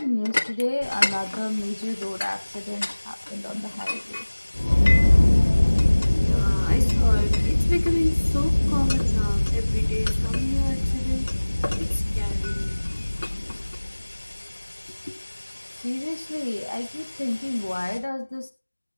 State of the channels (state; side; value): inverted; both; correlation -1.00